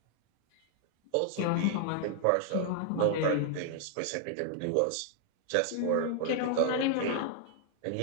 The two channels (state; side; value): different; both; correlation -0.01